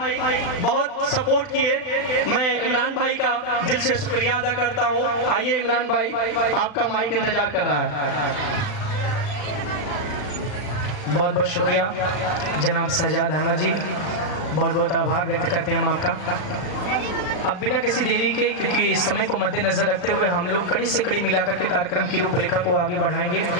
बहुत सपोर्ट किए, मैं इमरान भाई का दिल से शुक्रिया अदा करता हूँ। आइए इमरान भाई, आपका माइक इंतजार कर रहा है। बहुत बहुत शुक्रिया जनाब शहजाद अहमद जी, बहुत बहुत आभार व्यक्त करते हैं हम आपका। अब बिना किसी देरी के, क्योंकि समय को मद्देनजर रखते हुए हम लोग कड़ी से कड़ी मिलाकर के कार्यक्रम की रूपरेखा को आगे बढ़ाएंगे।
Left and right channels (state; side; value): late; right; 39 ms